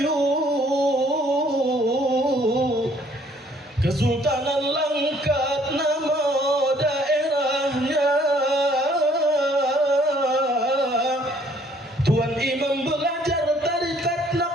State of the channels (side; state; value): both; normal; correlation 0.61